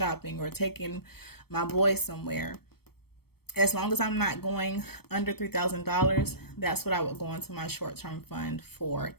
or taking my boys somewhere, as long as I'm not going under $3,000, that's what I would go into my short-term fund for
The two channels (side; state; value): right; late; 0.96 ms